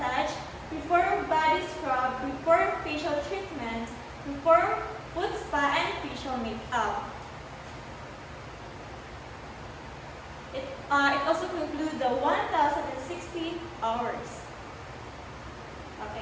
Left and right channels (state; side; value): identical; both; correlation 1.00